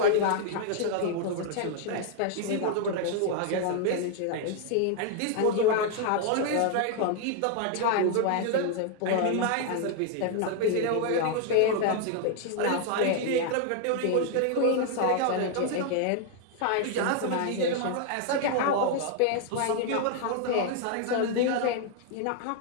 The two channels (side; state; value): both; different; correlation 0.00